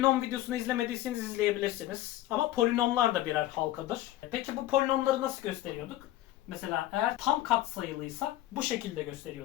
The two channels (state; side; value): quieter; right; 14.7 dB